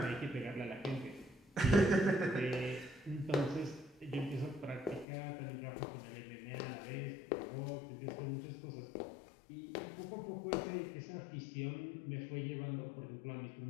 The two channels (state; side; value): drops out; right; at 5.1 s